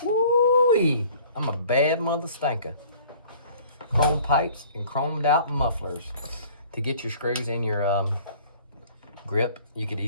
Woo-wee. I'm a bad mother stinker. Chrome pipes and chromed out mufflers. To get your screws in your grip, you could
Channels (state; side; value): inverted; both; correlation -0.51